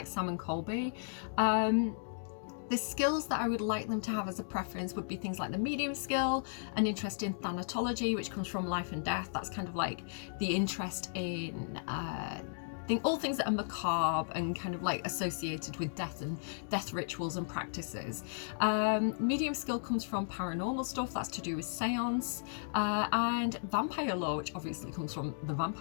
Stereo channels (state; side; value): silent; right; digital silence